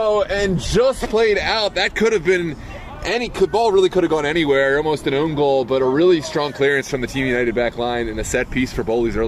and just played out. That could have been ball really could have gone anywhere. Almost an own goal, but a really strong clearance from the Team United back line and a set piece for Bowleys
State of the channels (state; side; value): identical; both; correlation 1.00